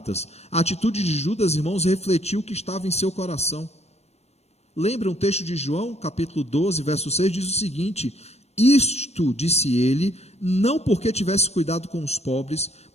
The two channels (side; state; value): right; late; 0.31 ms